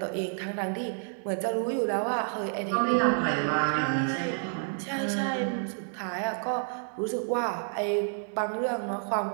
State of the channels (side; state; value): left; silent; 58 dB below the other